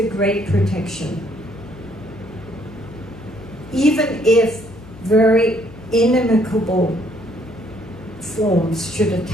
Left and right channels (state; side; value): noise; left; hum, 19 dB below the sound